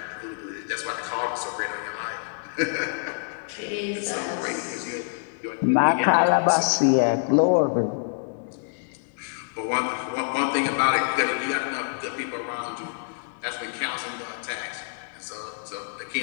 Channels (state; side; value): silent; right; digital silence